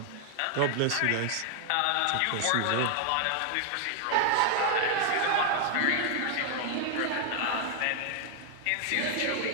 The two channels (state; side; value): different; both; correlation 0.00